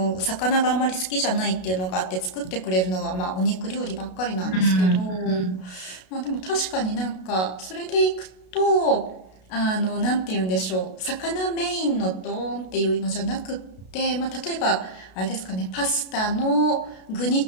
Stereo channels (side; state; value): right; late; 32 ms